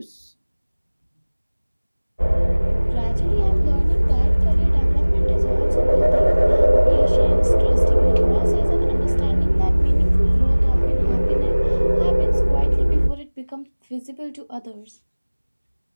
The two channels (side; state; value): both; inverted; correlation -1.00